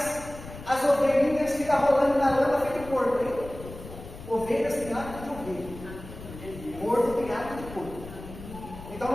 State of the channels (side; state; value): left; noise; rumble, 14 dB below the sound